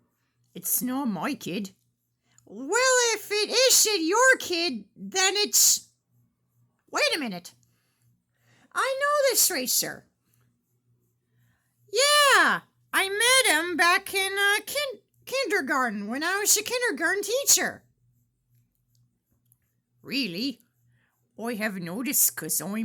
It's not my kid. Well, if it isn't your kid, then it's... Wait a minute. I know this racer. Yeah, I met him back in kindergarten when I was a kindergarten teacher. Really? I have noticed 'cause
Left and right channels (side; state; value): both; identical; correlation 1.00